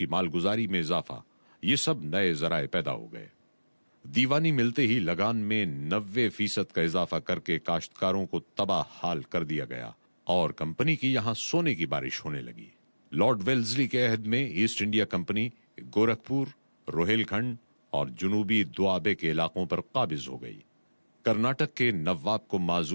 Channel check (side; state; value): both; inverted; correlation -1.00